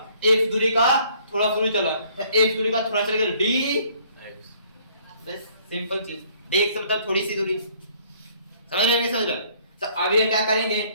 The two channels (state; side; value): inverted; both; correlation -0.60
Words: एक्स दूरी का थोड़ा सा दूरी चला, एक्स दूरी का थोड़ा चलेगा डी, बस सिंपल चीज। डी एक्स मतलब थोड़ी सी दूरी, समझ रहे, नहीं समझ रहे। तो अब ये क्या करेंगे,